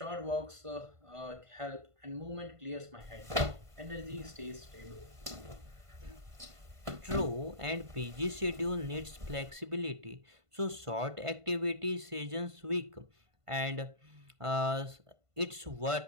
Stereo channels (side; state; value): left; late; 1.5 ms